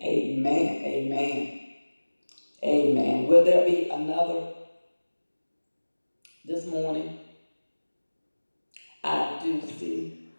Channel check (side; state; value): both; inverted; correlation -1.00